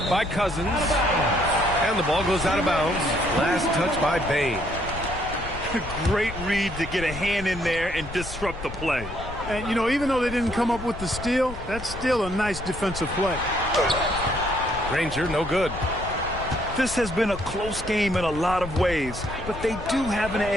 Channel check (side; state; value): left; noise; rumble, 11 dB below the sound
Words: by Cousins. And the ball goes out of bounds. Last touch by Bane. Great read to get a hand in there and disrupt the play. And, you know, even though they didn't come up with the steal, that's still a nice defensive play. Granger, no good. This has been a close game in a lot of ways, but they do have an